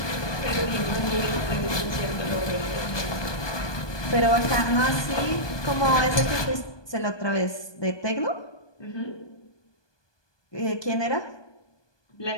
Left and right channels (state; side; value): late; right; 1.2 ms